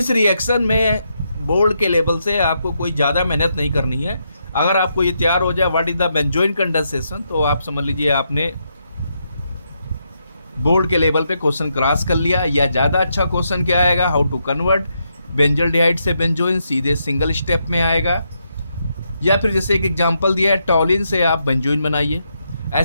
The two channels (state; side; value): inverted; both; correlation -0.80